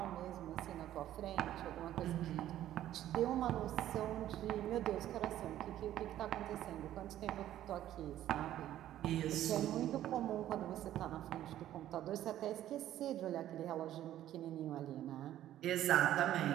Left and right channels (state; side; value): quieter; left; 12.6 dB